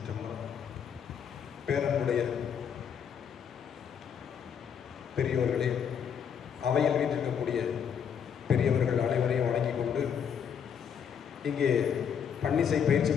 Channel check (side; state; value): right; quieter; 7.7 dB